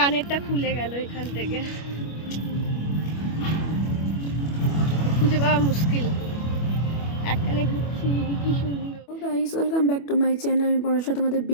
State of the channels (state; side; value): late; right; 25 ms